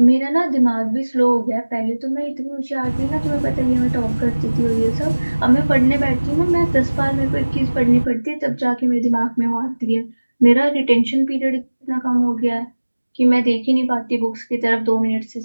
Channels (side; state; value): both; inverted; correlation -1.00